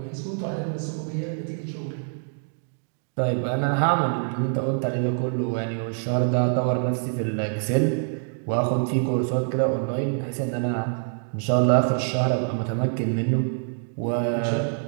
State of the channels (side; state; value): left; silent; 61 dB below the other